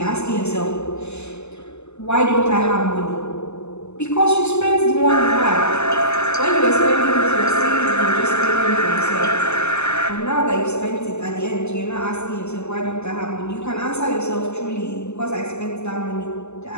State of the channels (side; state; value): right; late; 0.82 ms